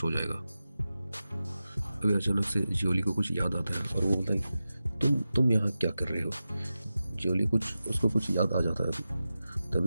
हो जाएगा। अभी अचानक से जियोली को कुछ याद आता है और वो बोलता है तुम यहाँ क्या कर रहे हो। जियोली उसको कुछ याद आ जाता है अभी।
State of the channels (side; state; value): both; inverted; correlation -0.93